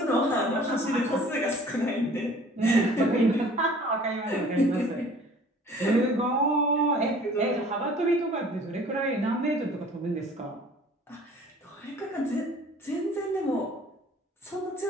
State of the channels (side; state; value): both; normal; correlation 0.50